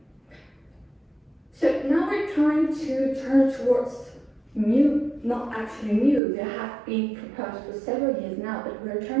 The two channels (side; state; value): left; drops out; at 6.2 s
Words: So now we're trying to turn towards new, not actually new, they have been proposed for several years now, but we're